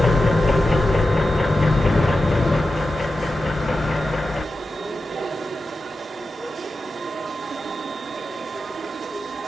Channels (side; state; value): both; normal; correlation 0.91